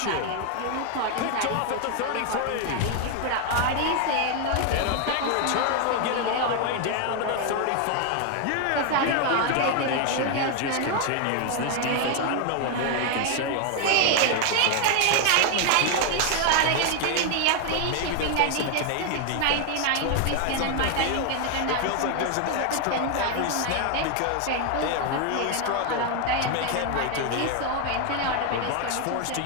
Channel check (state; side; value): different; both; correlation 0.00